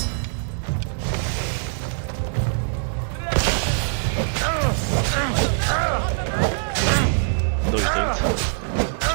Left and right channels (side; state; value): left; silent; digital silence